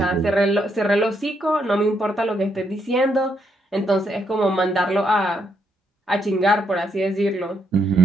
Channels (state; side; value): normal; both; correlation 0.76